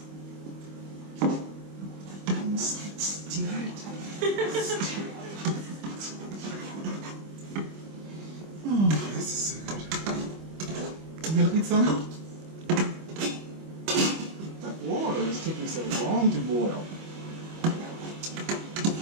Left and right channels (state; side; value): late; left; 25 ms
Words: Stir it. Oh, this is so good. You gonna eat some? That water is taking so long to boil.